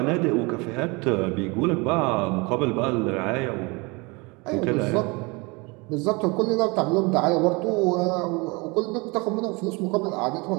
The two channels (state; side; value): quieter; left; 27.2 dB